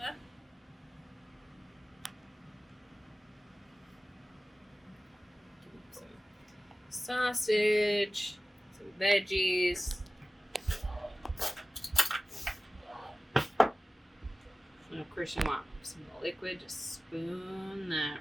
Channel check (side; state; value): both; normal; correlation 0.96